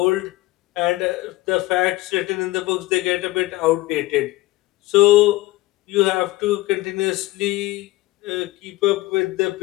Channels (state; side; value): quieter; right; 18.5 dB